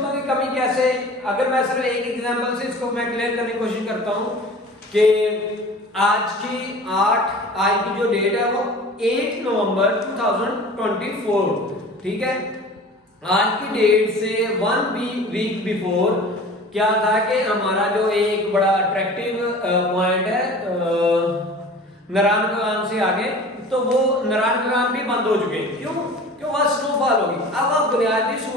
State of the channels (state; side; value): normal; both; correlation 0.41